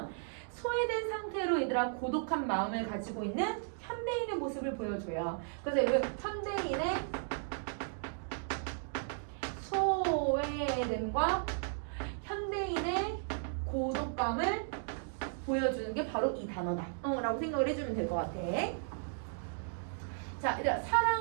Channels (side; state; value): left; silent; digital silence